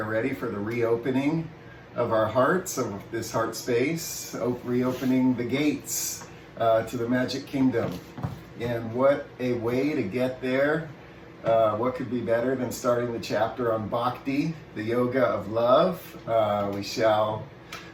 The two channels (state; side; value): identical; both; correlation 1.00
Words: ready for the reopening of our hearts, of this heart space, reopening the gates to the Magic Kingdom. And what a way to get there. What could be better than starting the chapter on Bhakti, the yoga of love. We shall